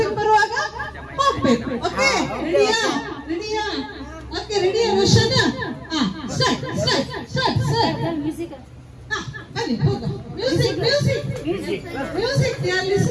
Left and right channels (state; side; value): identical; both; correlation 1.00